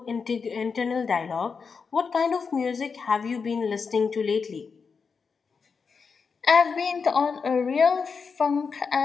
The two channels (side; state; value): right; quieter; 5.4 dB